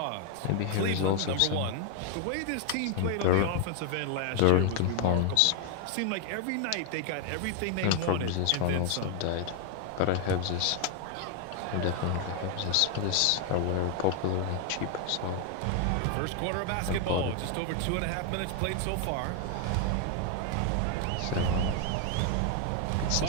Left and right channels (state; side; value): different; both; correlation 0.01